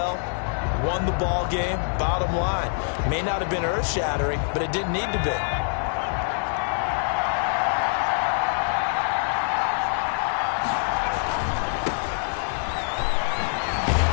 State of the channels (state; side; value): silent; right; 62 dB below the other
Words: Won the ball game. Bottom line, may not have been earth-shattering, but it didn't need to be.